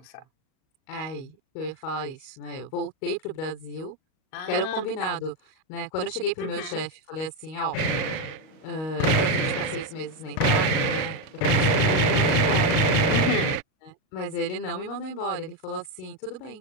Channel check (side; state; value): right; late; 38 ms